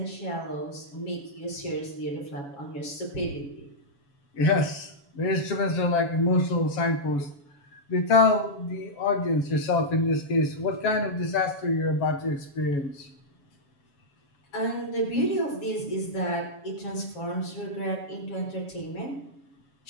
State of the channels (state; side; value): late; right; 7.1 ms